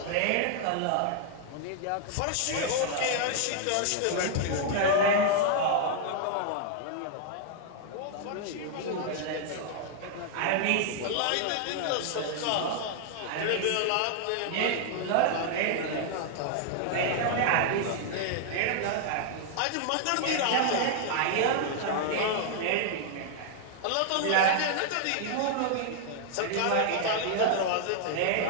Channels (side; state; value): both; different; correlation 0.00